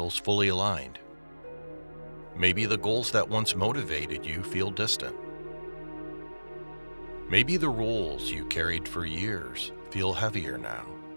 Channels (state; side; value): inverted; both; correlation -1.00